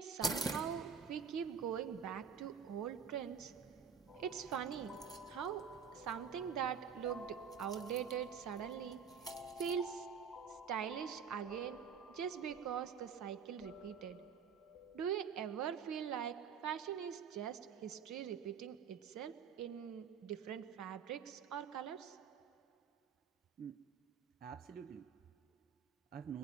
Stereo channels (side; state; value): left; quieter; 6.8 dB